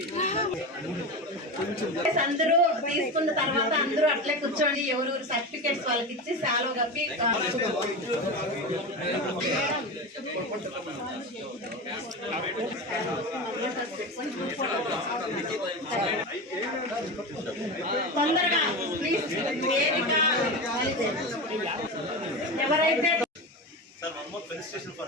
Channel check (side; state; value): both; normal; correlation 0.23